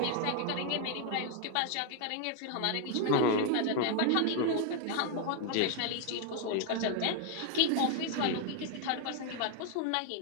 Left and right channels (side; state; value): both; different; correlation 0.01